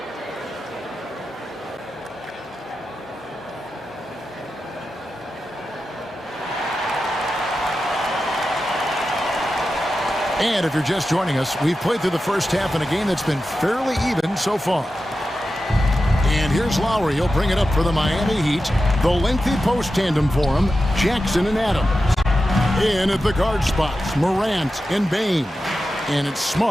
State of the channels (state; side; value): normal; both; correlation 0.92